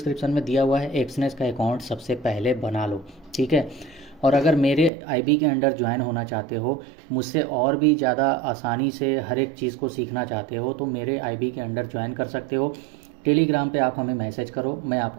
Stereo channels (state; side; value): drops out; left; at 4.9 s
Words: में दिया हुआ है, एक्सनेस का अकाउंट सबसे पहले बना लो, ठीक है। और अगर मेरे आईबी के अंडर ज्वाइन होना चाहते हो, मुझसे और भी ज़्यादा आसानी से हर एक चीज़ को सीखना चाहते हो तो मेरे आईबी के अंडर ज्वाइन कर सकते हो। टेलीग्राम पे आप हमें मैसेज करो, मैं